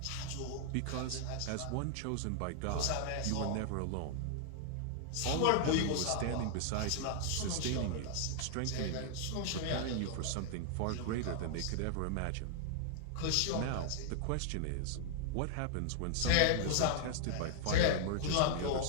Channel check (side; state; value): both; different; correlation -0.01